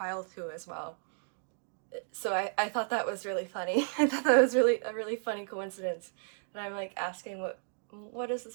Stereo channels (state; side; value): silent; left; 55 dB below the other